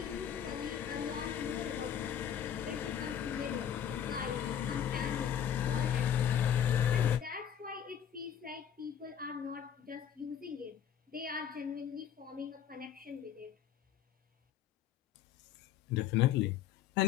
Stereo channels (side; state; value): right; quieter; 9.2 dB